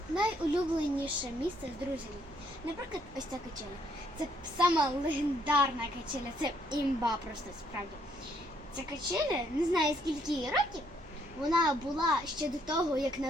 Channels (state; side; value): normal; both; correlation 0.69